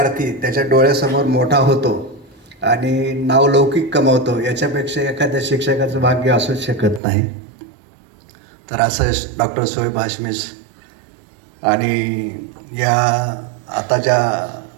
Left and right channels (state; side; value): drops out; left; at 7.0 s